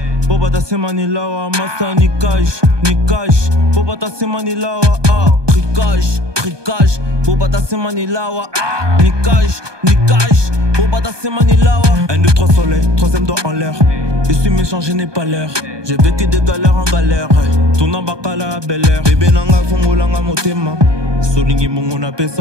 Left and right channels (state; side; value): late; left; 1.2 ms